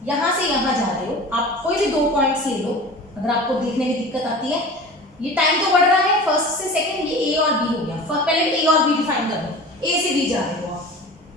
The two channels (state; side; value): normal; both; correlation 0.37